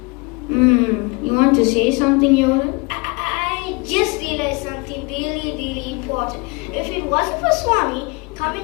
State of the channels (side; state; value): right; quieter; 28.4 dB